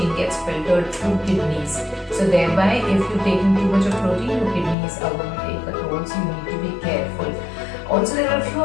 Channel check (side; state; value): right; drops out; at 4.8 s